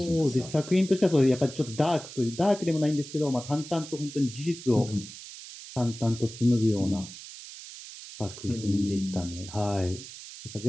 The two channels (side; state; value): right; noise; hiss, 14 dB below the sound